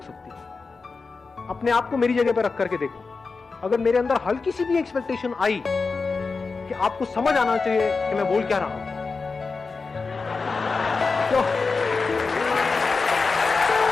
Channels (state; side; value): quieter; right; 4.4 dB